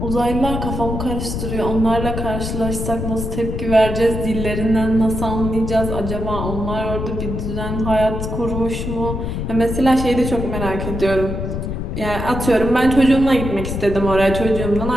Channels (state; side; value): noise; left; rumble, 4 dB below the sound